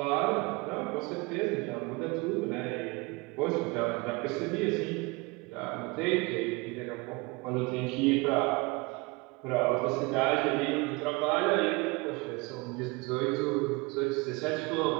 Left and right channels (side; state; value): left; quieter; 26.4 dB